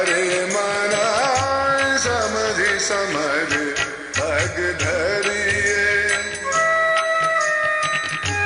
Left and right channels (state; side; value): identical; both; correlation 1.00